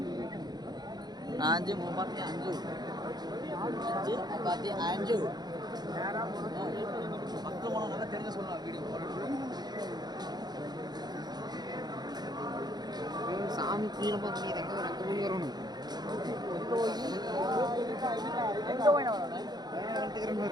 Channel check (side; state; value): left; late; 0.20 ms